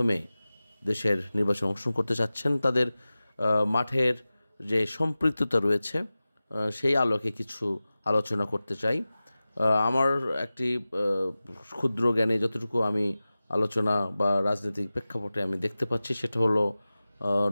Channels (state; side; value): inverted; both; correlation -0.96